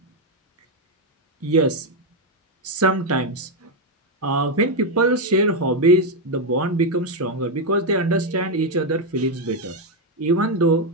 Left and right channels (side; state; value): both; normal; correlation 0.04